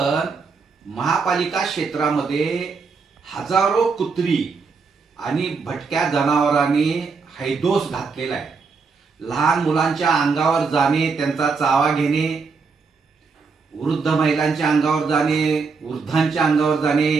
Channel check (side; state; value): left; quieter; 4.9 dB